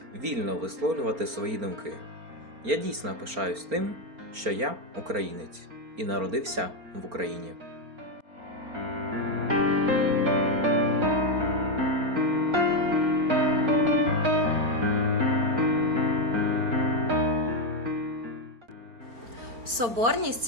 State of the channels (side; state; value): left; late; 4.4 ms